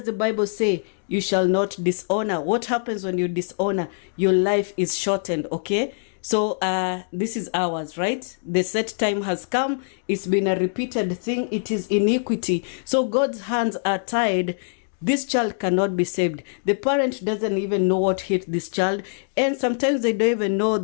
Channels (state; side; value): silent; right; digital silence